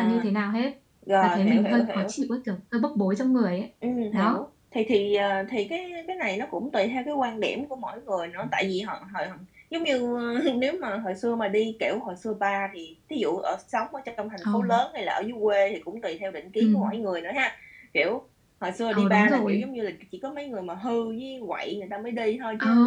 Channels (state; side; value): identical; both; correlation 1.00